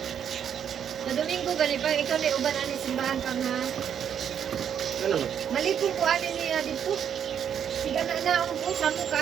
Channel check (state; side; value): quieter; left; 8.6 dB